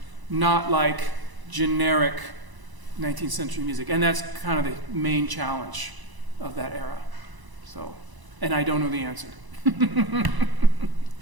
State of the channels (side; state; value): left; late; 1.0 ms